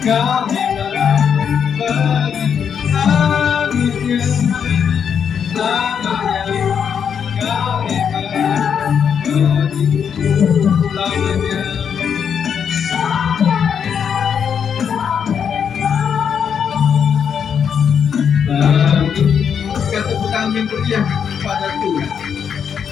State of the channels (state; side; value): quieter; right; 7.5 dB